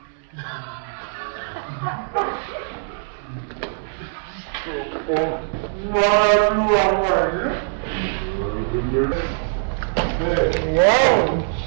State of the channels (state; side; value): silent; left; 64 dB below the other